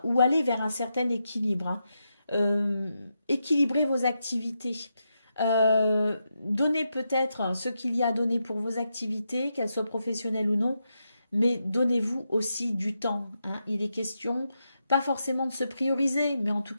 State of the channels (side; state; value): both; inverted; correlation -0.85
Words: ou aller vers un certain équilibre. Hein. Équilibrer vos activités. Donnez peut-être ce qu'il y a à donner pour vos activités, qu'elles soient professionnelles ou non, mais donnez-vous aussi du temps. Hein. Il est question pas forcément de se prioriser, mais en tout